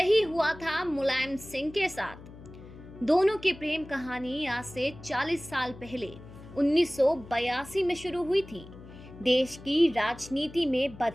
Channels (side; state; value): left; noise; hum, 17 dB below the sound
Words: हुआ था मुलायम सिंह के साथ। दोनों की प्रेम कहानी आज से 40 साल पहले 1982 में शुरू हुई थी। देश की राजनीति में